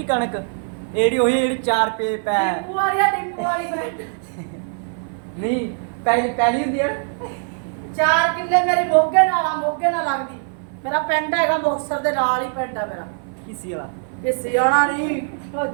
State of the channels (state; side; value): silent; left; 57 dB below the other